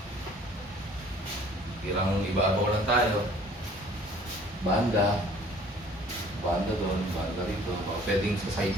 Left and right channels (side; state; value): both; normal; correlation 0.53